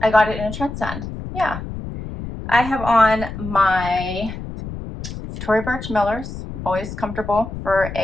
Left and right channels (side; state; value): left; noise; rumble, 9 dB below the sound